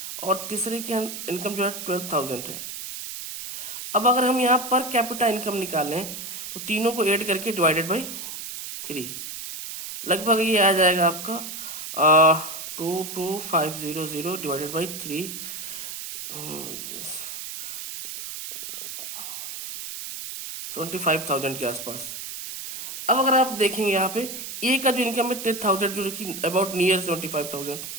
और तीसरे की इनकम जो है 12,000 है। अब अगर हम यहाँ पर कैपिटा इनकम निकालें तो तीनों को ऐड करके डिवाइडेड बाई 3, लगभग ये आ जाएगा आपका 22500 डिवाइडेड बाई 3, 75,000 के आसपास। अब अगर आप देखेंगे यहाँ पे ए का जो इनकम है 10,000 जो कि अबाउट नियर 75,000,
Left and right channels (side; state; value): right; noise; hiss, 8 dB below the sound